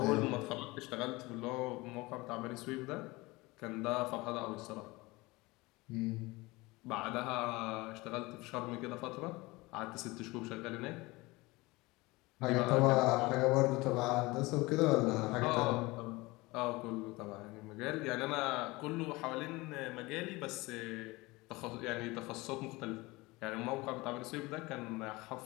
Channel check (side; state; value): right; quieter; 22.4 dB